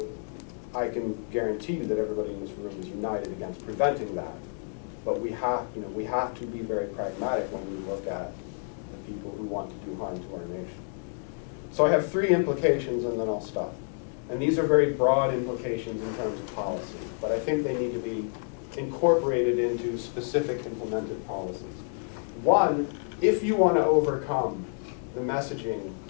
I can guarantee you that everybody in this room is united against preventing that. But we have to be very pragmatic when we look at the people who want to do harm to our nation. So I have 3 implications and then I'll stop. And these are very broad implications in terms of policy, but I think they need to be incorporated into specific implemented policies. One, if you want to overcome the messaging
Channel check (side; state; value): right; silent; 59 dB below the other